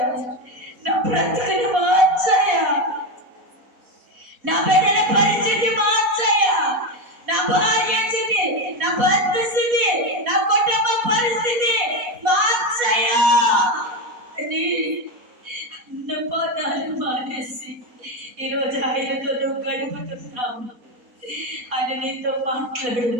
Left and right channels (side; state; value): left; late; 4.1 ms